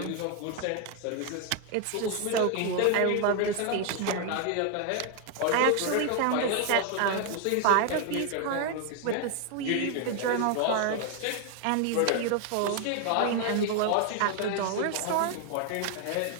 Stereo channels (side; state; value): both; different; correlation 0.01